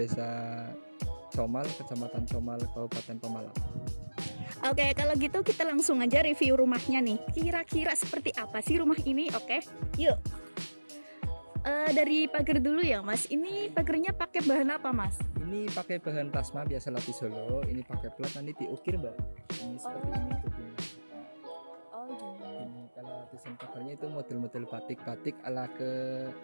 Comal, Kecamatan Comal, Kabupaten Pemalang. Oke, kalau gitu kita langsung aja review rumahnya nih. Kira-kira seperti apa sih rumah ini? Oke, yuk. Dari pagar dulu ya, Mas. Ini pagarnya pakai bahan apa, Mas? Ini pakai bahan plasma biasa lapis Solo. Ini pakai plat, nanti diukir, Mbak. Ini seperti ini tutupnya. Oh, gini. Ini kalau lapisan pagarnya itu model-model batik-batik ala ke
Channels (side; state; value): both; inverted; correlation -1.00